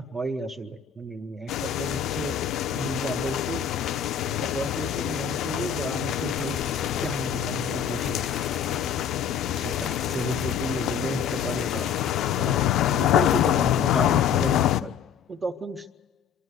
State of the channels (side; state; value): right; quieter; 7.6 dB